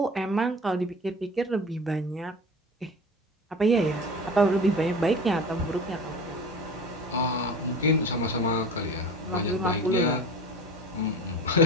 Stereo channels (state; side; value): normal; both; correlation 0.36